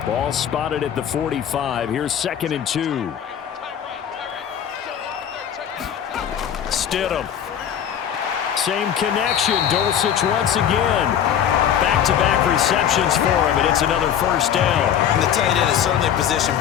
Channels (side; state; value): right; quieter; 9.3 dB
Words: Ball spotted at the 45. Here's 2nd and 2. Stidham. Same connection. Dulcich once again. Back-to-back receptions for him, and it's another first down. And the tight end is certainly a position